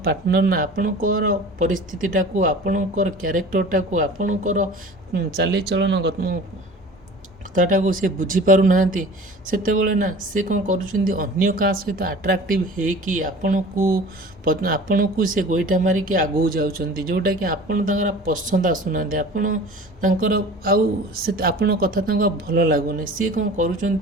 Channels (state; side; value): normal; both; correlation 0.41